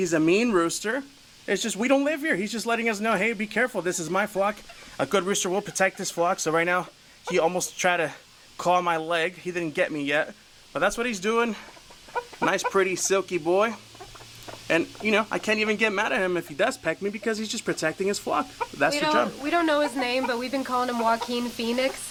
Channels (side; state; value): both; identical; correlation 1.00